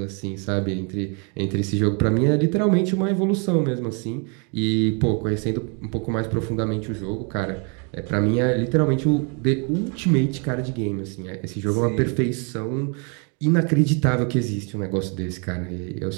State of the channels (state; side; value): quieter; left; 36.0 dB